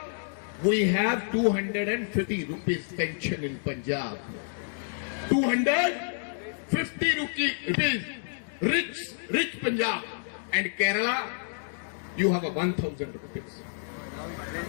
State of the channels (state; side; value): silent; right; digital silence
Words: We have 250 rupees pension in Punjab. 250 rupees. Rich Punjab. And Kerala, you have a 1,000 rupees.